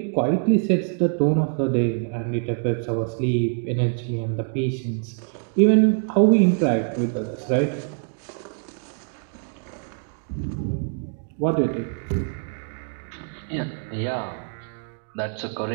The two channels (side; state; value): left; silent; 56 dB below the other